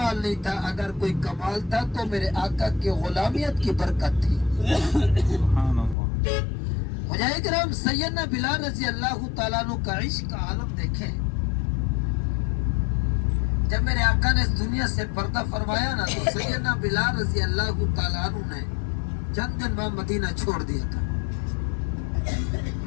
نہیں تھا، اگر کوئی کمال تھا تو میرے آقا کی غلامیت کی برکت تھی۔ مجاہد کرام سیدنا بلال رضی اللہ تعالیٰ عنہ کا عشق کا عالم دیکھیں۔ جب میرے آقا نے اس دنیا سے پردہ فرمایا نا تو سیدنا بلال رضی اللہ تعالیٰ عنہ نے چند دن بعد مدینہ چھوڑ دیا تھا۔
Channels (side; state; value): right; drops out; at 6.0 s